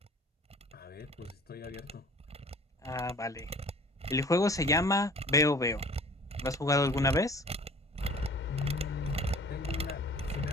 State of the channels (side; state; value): both; normal; correlation 0.47